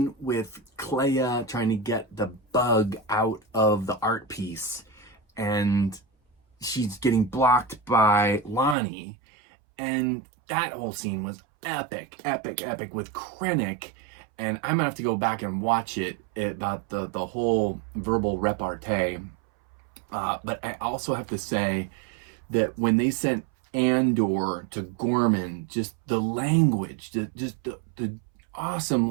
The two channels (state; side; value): drops out; left; at 8.8 s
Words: with Clea trying to get the bug out of the art piece, and she's getting blocked by Lonnie, and that whole scene was epic with Krennic. And I'm gonna have to go back and watch it about the whole verbal repartee. But I also have to say that when they sent Andor to Gorman, just the language, the awesome